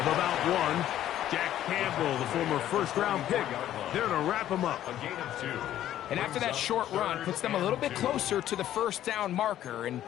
about 1. Jack Campbell, the former first-round pick, there to wrap him up. A gain of 2. And after that short run, puts them a little bit closer to the first down marker, and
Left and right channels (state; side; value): quieter; right; 12.2 dB